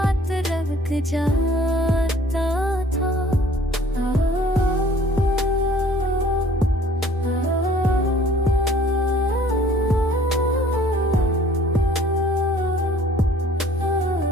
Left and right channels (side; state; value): both; normal; correlation 0.54